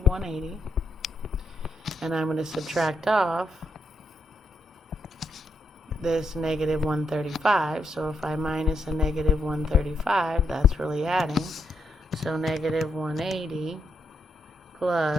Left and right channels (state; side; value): normal; both; correlation 0.80